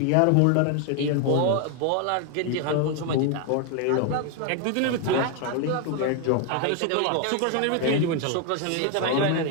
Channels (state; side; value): different; both; correlation 0.01